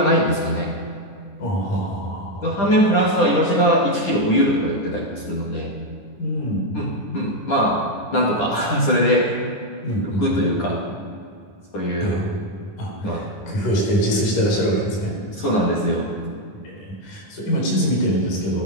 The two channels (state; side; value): late; right; 10 ms